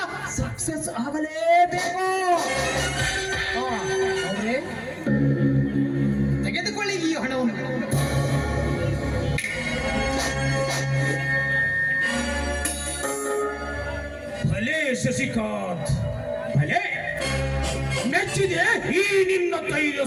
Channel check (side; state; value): both; identical; correlation 1.00